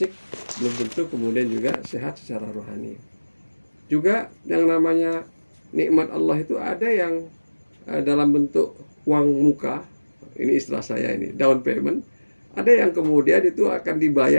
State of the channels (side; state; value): both; inverted; correlation -1.00